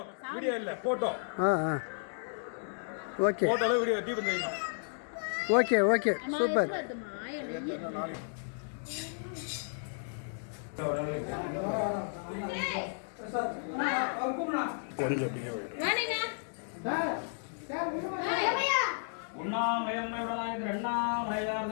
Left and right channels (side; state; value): right; silent; digital silence